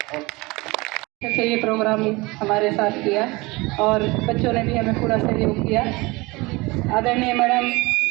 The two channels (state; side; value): quieter; left; 23.6 dB